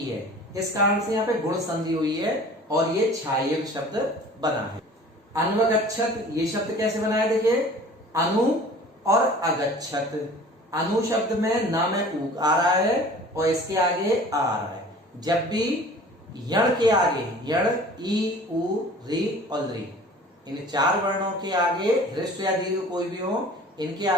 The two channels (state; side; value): normal; both; correlation 0.45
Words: है। इस कारण से यहाँ पे गुण संधि हुई है और ये छाये शब्द बना है। अन्वगच्छत ये शब्द कैसे बना है? देखिए अनु और अगच्छत। अनु शब्द में न में ऊ आ रहा है और इसके आगे आ रहा है। जब भी यण के आगे, यण ई उ री और री, इन चार वर्णों के आगे ह्रस्व या दीर्घ कोई भी हो, इनके